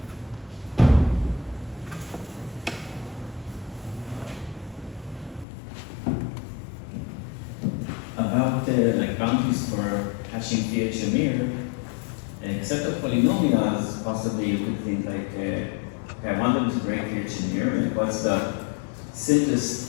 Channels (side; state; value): right; drops out; at 5.5 s